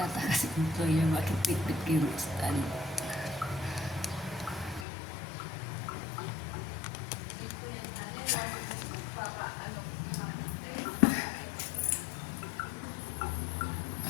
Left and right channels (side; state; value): right; drops out; at 4.9 s